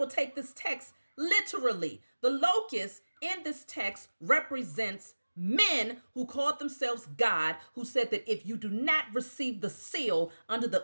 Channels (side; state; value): both; inverted; correlation -1.00